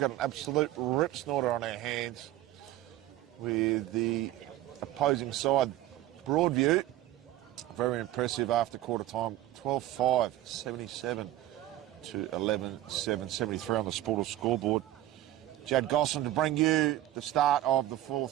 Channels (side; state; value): left; quieter; 14.4 dB